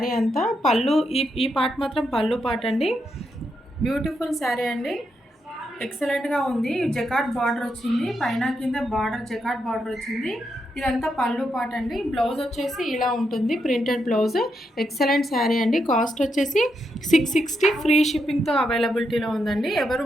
అంతా. పళ్ళు ఈ పార్ట్ మాత్రం పళ్ళు పార్ట్ అండి. బ్యూటిఫుల్ శారీ అండి. ఎక్సలెంట్గా ఉంది. జకాట్ బార్డర్ వచ్చింది, పైన కింద బార్డర్ జకాట్ బార్డర్ వచ్చింది. ఇదంతా పళ్ళు పార్ట్ అండి. బ్లౌజ్ వచ్చేసి ఇలా ఉంటుంది, ప్రింటెడ్ బ్లౌజ్. ఎక్సలెంట్ శారీ అండి. కాస్ట్ వచ్చేసి 660 ఫ్రీ షిప్పింగ్తో అవైలబిలిటీలో ఉందండి. ఎవరు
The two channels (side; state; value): both; normal; correlation 0.82